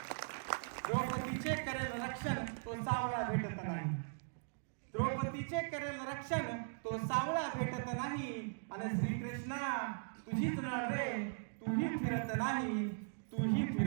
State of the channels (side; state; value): left; silent; digital silence